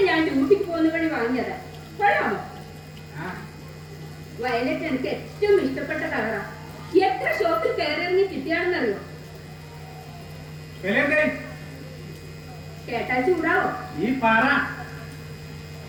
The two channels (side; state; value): both; identical; correlation 1.00